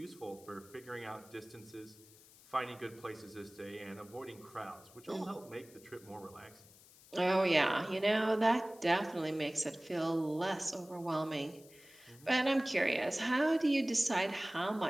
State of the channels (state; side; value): noise; left; hiss, 23 dB below the sound